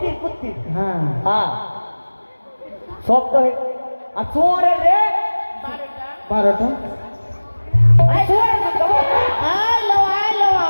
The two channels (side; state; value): both; inverted; correlation -1.00